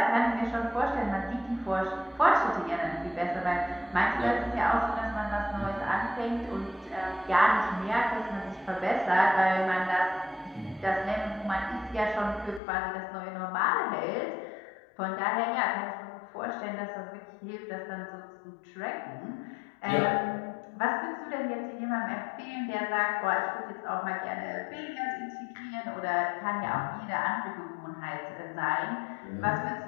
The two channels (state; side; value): drops out; right; at 12.6 s